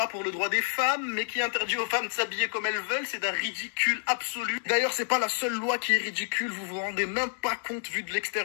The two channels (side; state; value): right; silent; 59 dB below the other